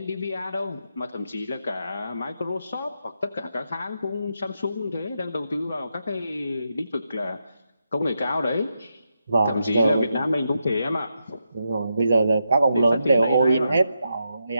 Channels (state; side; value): inverted; both; correlation -0.84